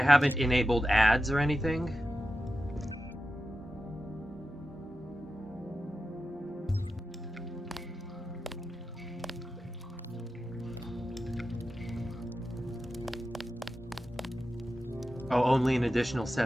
haven't enabled ads or anything. Oh, only an additional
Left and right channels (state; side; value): normal; both; correlation 0.92